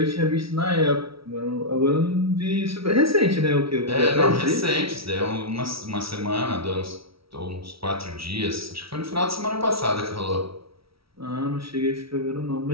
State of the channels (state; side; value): late; left; 0.75 ms